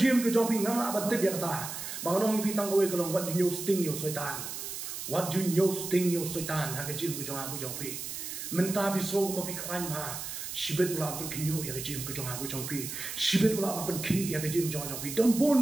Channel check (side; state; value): right; noise; hiss, 7 dB below the sound